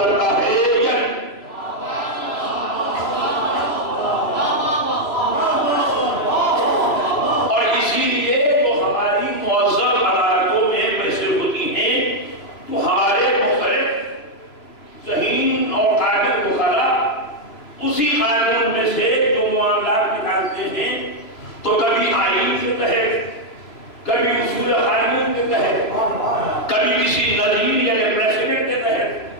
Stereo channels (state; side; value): late; right; 3.0 ms